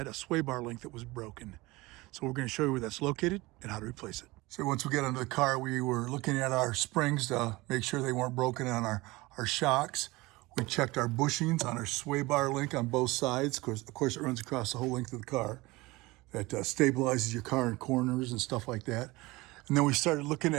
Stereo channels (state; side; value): quieter; left; 21.6 dB